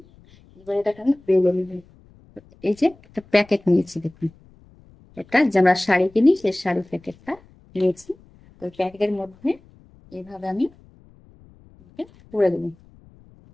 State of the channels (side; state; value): left; noise; rumble, 27 dB below the sound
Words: এবার এটাকে আমি বেলে নিব। এই যে একটা প্যাকেট নিয়েছি দেখুন, এটা যে আমরা শাড়ি কিনি সেই শাড়ি প্যাকেটটা নিয়েছি। তো প্যাকেটের মধ্যে এইভাবে আমি পুরে দেবো।